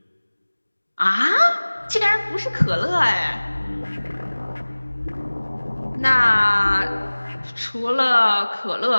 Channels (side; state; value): both; inverted; correlation -1.00